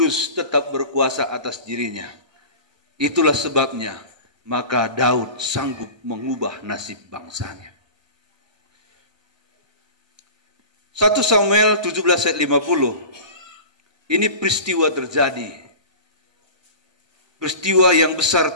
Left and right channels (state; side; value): late; left; 1.3 ms